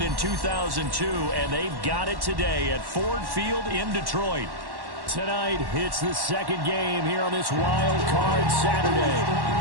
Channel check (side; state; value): left; late; 1.1 ms